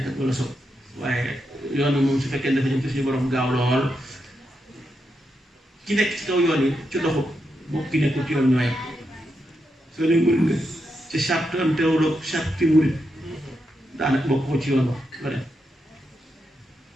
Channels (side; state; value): both; normal; correlation 0.84